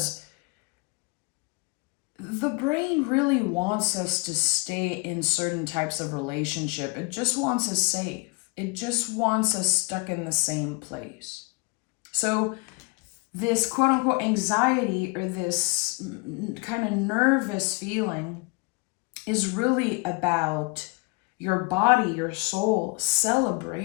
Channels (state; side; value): quieter; right; 29.3 dB